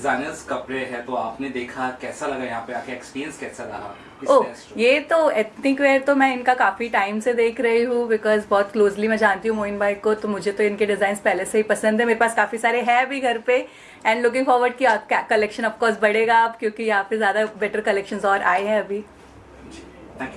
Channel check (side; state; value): both; identical; correlation 1.00